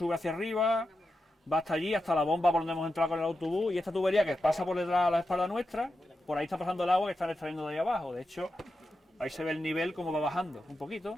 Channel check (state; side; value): normal; both; correlation 0.89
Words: hacia arriba, va hasta allí, hasta la bomba por donde hemos entrado con el autobús, y esta tubería que pasa por detrás de la espalda nuestra, por ahí está pasando el agua que están extrayendo de ahí abajo. De hecho, ahí se ve el nivel como va bajando un poquito,